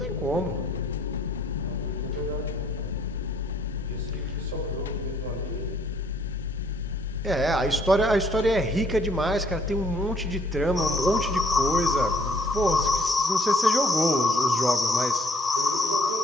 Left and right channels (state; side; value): normal; both; correlation 0.63